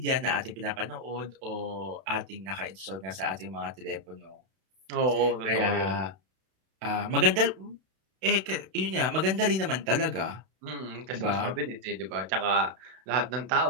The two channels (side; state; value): left; late; 32 ms